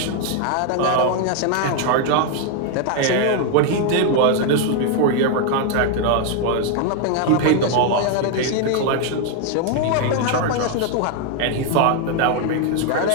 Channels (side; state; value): both; different; correlation 0.00